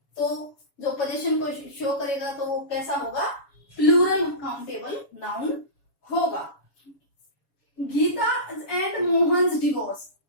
तो जो पोजीशन को शो करेगा तो वो कैसा होगा, प्लूरल काउंटेबल नाउन होगा। गीता एंड मोहन्स डिवोर्स,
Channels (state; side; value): late; right; 7.1 ms